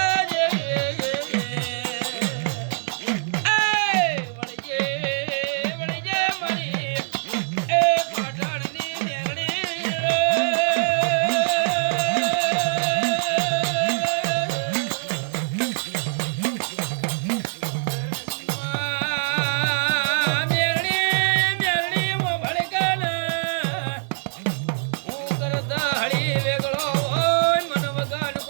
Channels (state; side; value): silent; left; 63 dB below the other